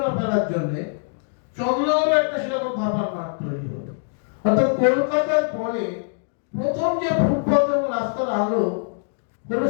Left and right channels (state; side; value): silent; right; digital silence